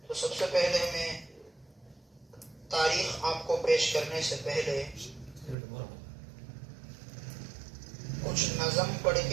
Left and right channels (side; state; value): left; drops out; at 5.6 s